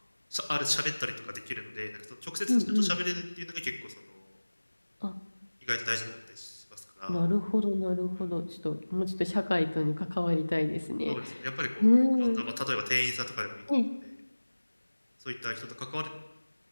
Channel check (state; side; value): inverted; both; correlation -1.00